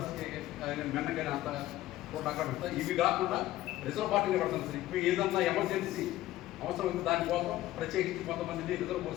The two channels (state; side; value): quieter; right; 15.3 dB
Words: మెన్నకైనా అంతా కూడా అక్కడ సార్. ఇవి కాకుండా రిజర్వ్ పార్టీని పెడతాం సార్. ఇప్పుడు ఏదన్నా ఎమర్జెన్సీ అవసరం ఉంది దానికోసం ప్రత్యేకించి కొంతమందిని రిజర్వ్